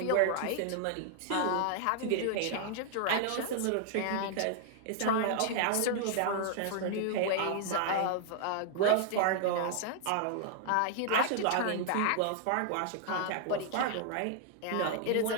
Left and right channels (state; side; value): different; both; correlation -0.01